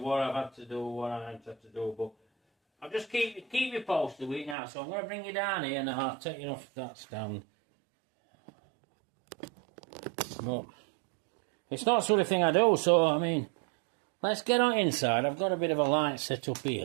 I've had to do, what I haven't had to do, but I'll just keep you posted with it now. So I'm going to bring you down here and I'll take you off that stand. But it's not the sort of thing I do, so I mean, let's get on inside. I've got a bit of a light set up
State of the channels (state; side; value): drops out; left; at 4.5 s